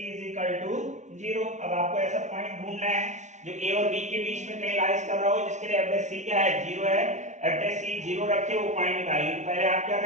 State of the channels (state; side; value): late; left; 0.34 ms